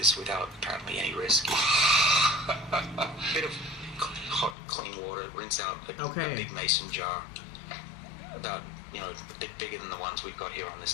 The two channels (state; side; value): drops out; right; at 4.5 s